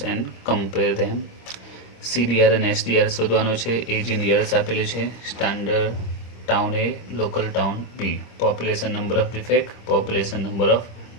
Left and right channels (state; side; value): late; right; 26 ms